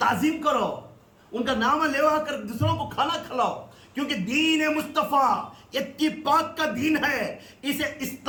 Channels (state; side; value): identical; both; correlation 1.00